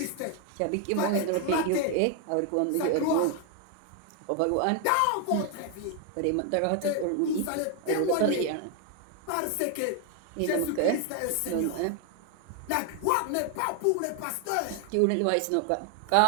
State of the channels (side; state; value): both; different; correlation 0.00